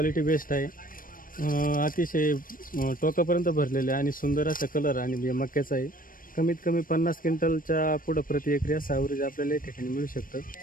बेस्ट आहे. अतिशय टोकापर्यंत भरलेले आणि सुंदर असा कलर आणि मक्याचा आहे. कमीत कमी 50 क्विंटलच्या पुढं प्रति एकरी असं ॲव्हरेज आपल्याला या ठिकाणी मिळू शकतं.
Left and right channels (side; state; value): right; late; 0.40 ms